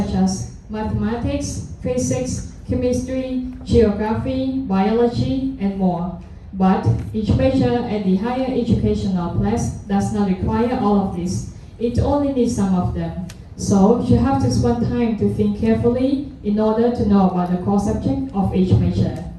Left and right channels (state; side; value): identical; both; correlation 1.00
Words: as mathematics, physics, chemistry, geography, biology, and more. But each major at the higher educational class does not require all of this. It only needs some of them. So you have to spend time to think carefully in order to know about the core subject of each major.